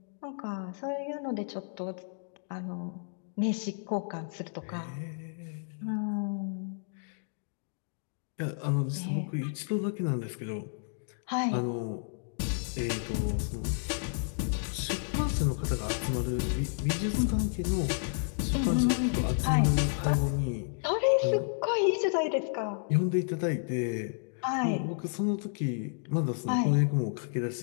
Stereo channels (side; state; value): right; silent; digital silence